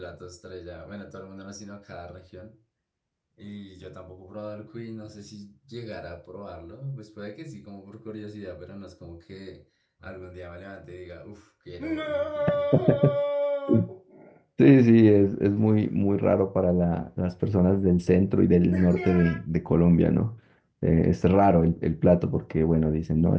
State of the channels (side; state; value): both; identical; correlation 1.00